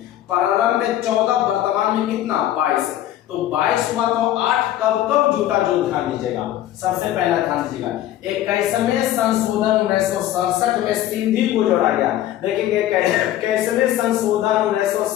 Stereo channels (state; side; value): quieter; right; 12.9 dB